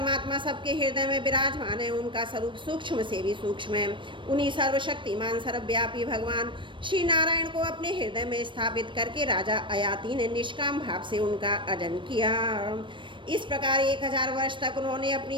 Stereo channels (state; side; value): late; left; 0.24 ms